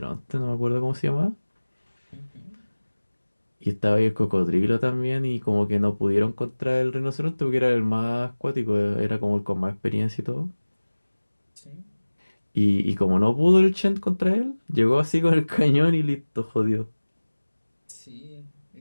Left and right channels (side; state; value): both; inverted; correlation -1.00